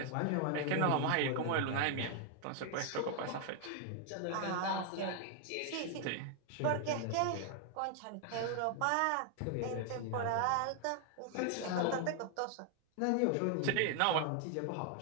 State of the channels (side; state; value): both; different; correlation 0.00